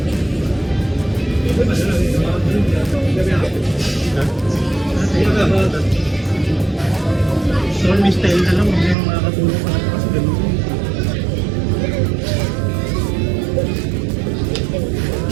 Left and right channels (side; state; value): left; drops out; at 9.0 s